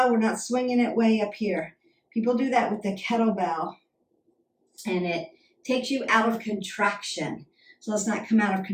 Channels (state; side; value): identical; both; correlation 1.00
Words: We're not swinging it way up here. People do that with the kettlebell, and it takes you out of contraction. So let's not come out of